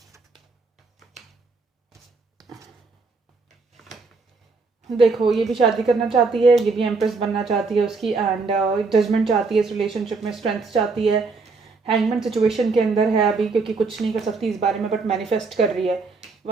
देखो, ये भी शादी करना चाहती है, ये भी एम्प्रेस बनना चाहती है उसकी, एंड जजमेंट चाहती है इस रिलेशनशिप में, स्ट्रेंथ चाहती है, हैंगमैन सिचुएशन के अंदर है अभी क्योंकि कुछ नहीं कर सकती इस बारे में, बट मैनिफेस्ट कर रही है।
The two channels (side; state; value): left; quieter; 4.2 dB